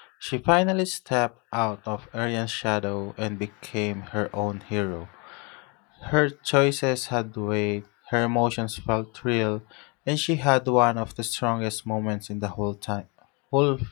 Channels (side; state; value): right; quieter; 30.7 dB